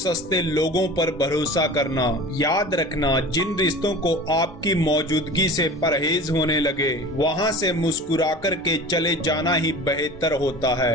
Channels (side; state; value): left; noise; rumble, 24 dB below the sound